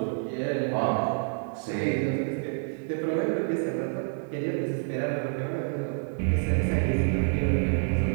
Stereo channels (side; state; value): left; silent; 59 dB below the other